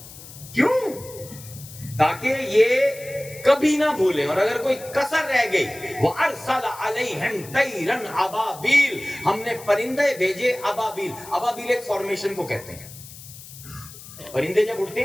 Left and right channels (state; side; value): noise; left; hiss, 17 dB below the sound